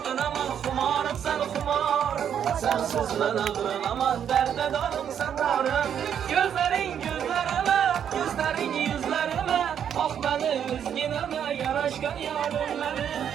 aman kumarım sen kumarım. Sensiz ben aldın aman derde darım sen darım. Gözlerin yüzlerime ah beni üzgüneme yaraşkan yarım beni.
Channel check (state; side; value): quieter; left; 8.8 dB